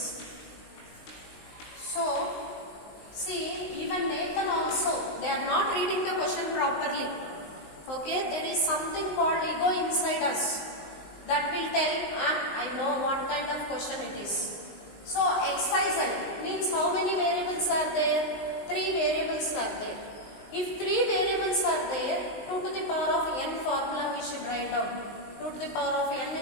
So see, even Nathan also, they are not reading the question properly. Okay, there is something called ego inside us that will tell, I know what kind of question it is. So XYZ means how many variables are there? 3 variables are there. If 3 variables are there, 2 to the power of n formula we should write down. 2 to the power of n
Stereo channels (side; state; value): right; late; 19 ms